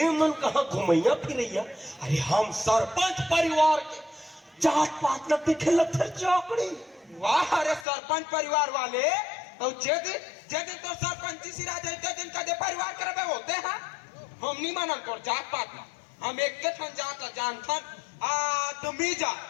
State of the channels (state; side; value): drops out; right; at 7.9 s